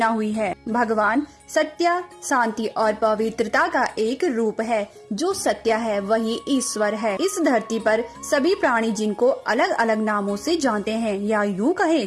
हुई है। भगवान सत्य, शांति और पवित्रता का एक रूप है। जो सत्य है वही ईश्वर है। इस धरती पर सभी प्राणी जिनको अलग अलग नामों से जानते हैं, या यूँ कहे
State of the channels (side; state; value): both; identical; correlation 1.00